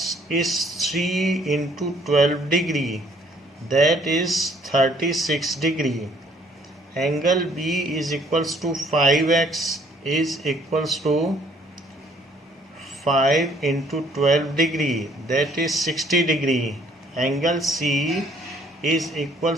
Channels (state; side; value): normal; both; correlation 0.61